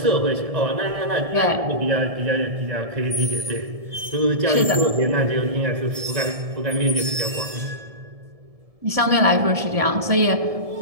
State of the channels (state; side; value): late; left; 1.7 ms